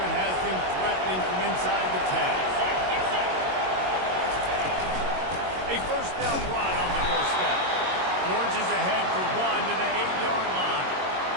one has them threatening from inside the 10. A 1st down run on the doorstep. Orange is ahead for 1 to the 8-yard line.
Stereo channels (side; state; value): left; late; 22 ms